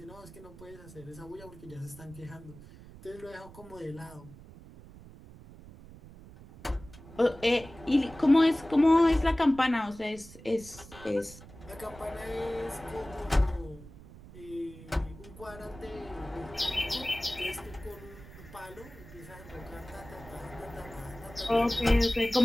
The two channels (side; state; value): right; noise; rumble, 18 dB below the sound